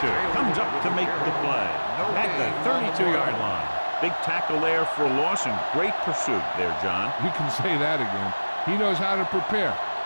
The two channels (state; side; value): inverted; both; correlation -1.00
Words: comes up to make the play at the 32-yard line. Big tackle there for a loss and great pursuit there, John. You can say that again. He knows how to prepare,